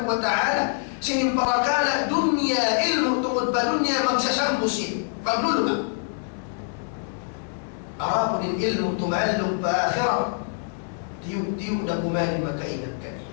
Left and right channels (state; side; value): silent; right; 61 dB below the other